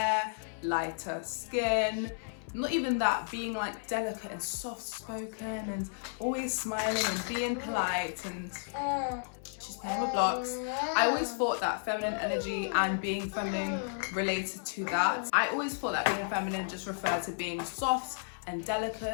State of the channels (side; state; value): right; silent; 56 dB below the other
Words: lighter skin. Not even that, being like delicate and soft-spoken and always smiling and being polite, and she's playing with blocks. I always thought that feminine energy and being feminine related to that. I always thought that being feminine just referred to being soft and